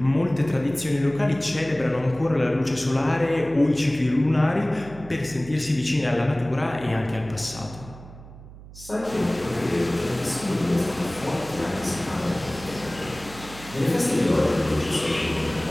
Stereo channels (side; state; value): right; noise; hum, 17 dB below the sound